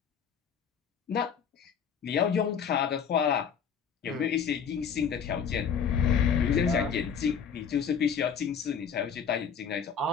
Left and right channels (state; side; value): quieter; right; 7.1 dB